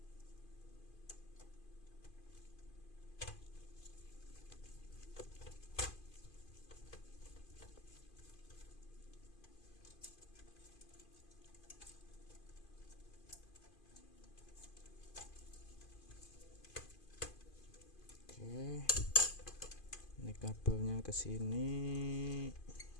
Oke, ini kabelnya ke sini.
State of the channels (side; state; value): right; late; 2.5 ms